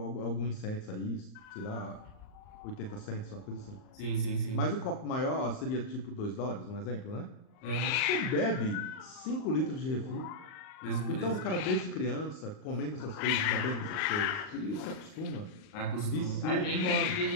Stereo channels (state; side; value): late; right; 38 ms